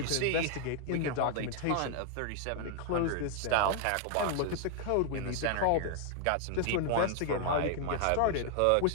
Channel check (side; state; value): both; different; correlation 0.00